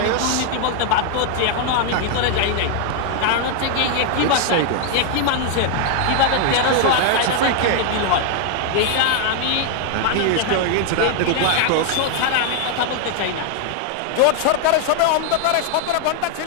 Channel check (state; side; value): different; both; correlation 0.00